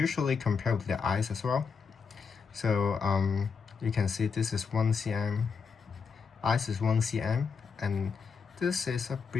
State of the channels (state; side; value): quieter; right; 5.6 dB